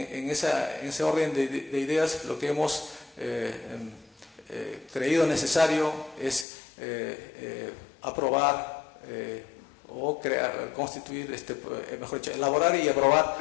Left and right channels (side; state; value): right; drops out; at 6.5 s